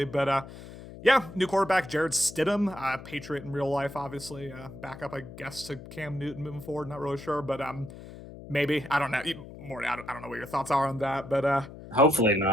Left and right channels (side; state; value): left; noise; hum, 15 dB below the sound